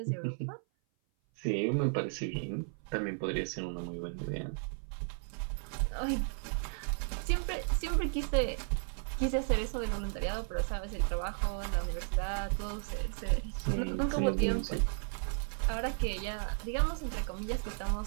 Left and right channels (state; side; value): silent; left; 55 dB below the other